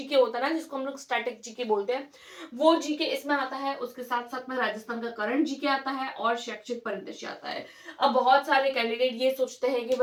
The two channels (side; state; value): both; identical; correlation 1.00